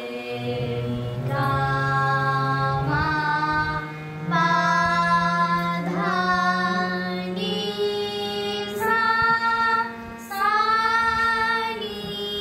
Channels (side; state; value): both; identical; correlation 1.00